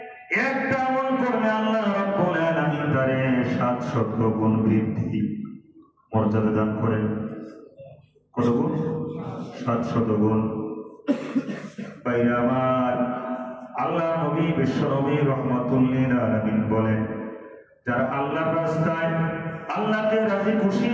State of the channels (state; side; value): identical; both; correlation 1.00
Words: একটা আমল করলে আল্লাহ রাব্বুল আলামিন তারে 700 গুণ বৃদ্ধি মর্যাদা দান করেন। কত গুণ? 700 গুণ। বাইরে আমার, আল্লাহ নবী বিশ্ব নবী রাহমাতুল লিল আলামিন বলেন, যারা আল্লাহর রাস্তায় আল্লাহকে রাজি খুশি